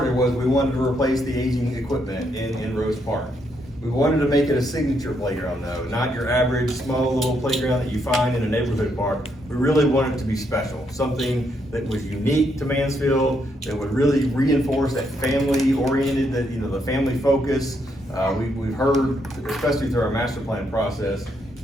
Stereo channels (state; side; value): normal; both; correlation 0.76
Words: was we wanted to replace the aging equipment in Rose Park. We wanted to make it a signature playground though, not your average small little playground that you find in a neighborhood park. We really wanted it to be special, something that was unique to Mansfield, that would really reinforce that family-oriented, the family focus. We've heard, especially through our master plan process,